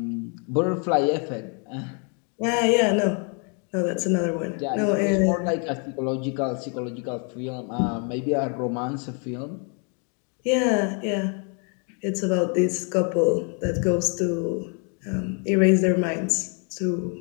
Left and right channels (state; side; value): quieter; right; 38.6 dB